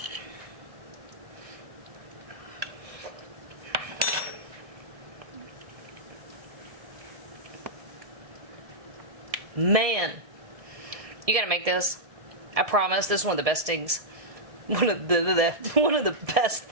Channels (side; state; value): left; late; 1.7 ms